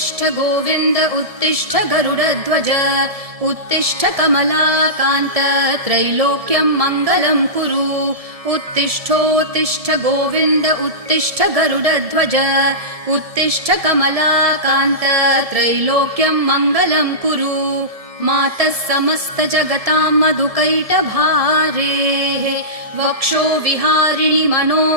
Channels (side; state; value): left; late; 1.7 ms